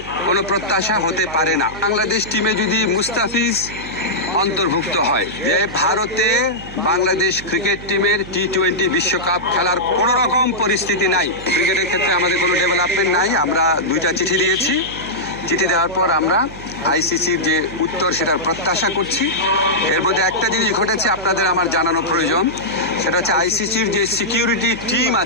কোনো প্রত্যাশা হতে পারে না। বাংলাদেশ টিমে যদি মুস্তাফিজ অন্তর্ভুক্ত হয়, যে ভারতে বাংলাদেশ ক্রিকেট টিমের T20 বিশ্বকাপ খেলার কোনো রকম পরিস্থিতি নাই। ক্রিকেটের ক্ষেত্রে আমাদের কোনো ডেভেলপমেন্ট নাই। আমরা 2টা চিঠি দিয়েছি। চিঠি দেওয়ার পর আমরা আইসিসির যে উত্তর সেটার প্রত্যাশা করছি। এর মধ্যে একটা জিনিস ঘটেছে আপনাদের আমার জানানো প্রয়োজন, সেটা হচ্ছে আইসিসির যে সিকিউরিটি টিম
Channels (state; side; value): noise; right; hum, 15 dB below the sound